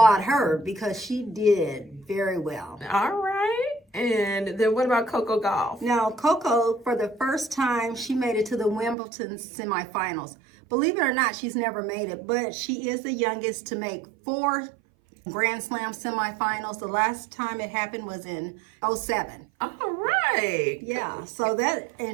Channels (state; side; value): drops out; left; at 9.0 s